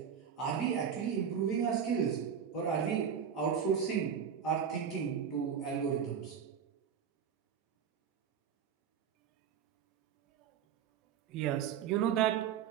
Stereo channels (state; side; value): quieter; left; 7.8 dB